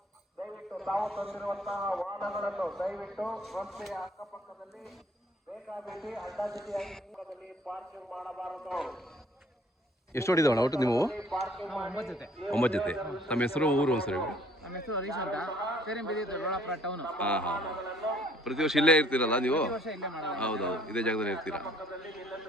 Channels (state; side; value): normal; both; correlation 0.59